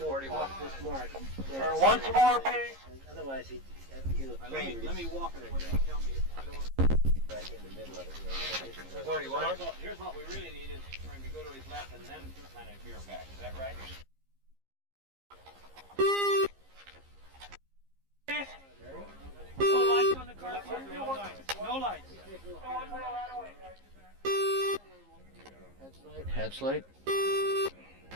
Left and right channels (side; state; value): left; late; 15 ms